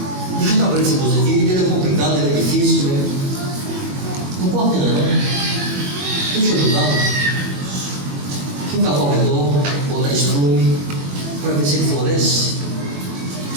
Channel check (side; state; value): left; late; 21 ms